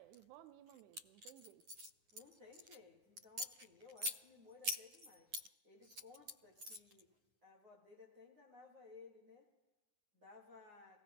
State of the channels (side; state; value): left; late; 9.6 ms